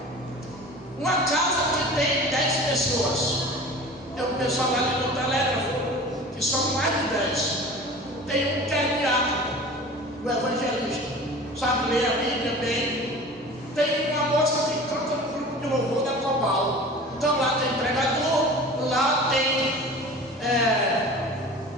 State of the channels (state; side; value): normal; both; correlation 0.39